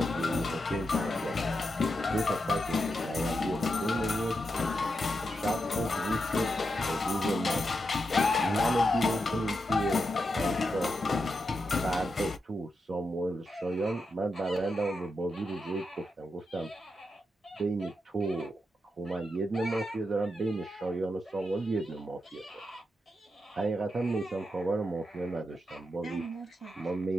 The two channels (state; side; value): normal; both; correlation 0.86